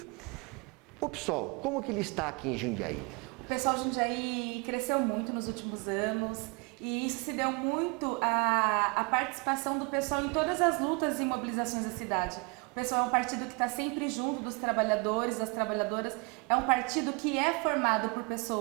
O PSOL, como que ele está aqui em Jundiaí? O pessoal de Jundiaí cresceu muito nos últimos anos. E isso se deu muito à participação do pessoal em todas as lutas e mobilizações da cidade. O pessoal é um partido que está sempre junto dos trabalhadores, das trabalhadoras. É um partido que é formado por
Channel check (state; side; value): quieter; left; 31.0 dB